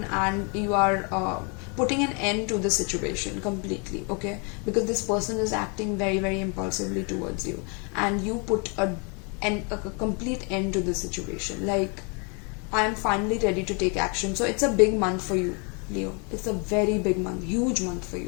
and you are putting an end to the situation completely, okay, because this person is acting very, very impulsively towards you, and you put a complete end to the situation. Like, I am finally ready to take action. So it's a big month for you, Leo. It's a very big month, huge month for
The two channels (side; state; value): right; quieter; 34.9 dB